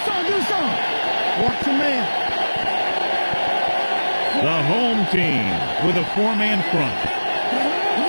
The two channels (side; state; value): both; inverted; correlation -1.00